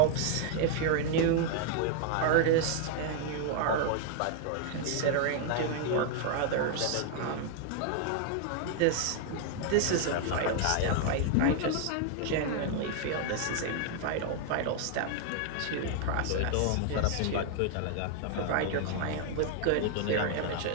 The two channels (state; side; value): different; both; correlation 0.00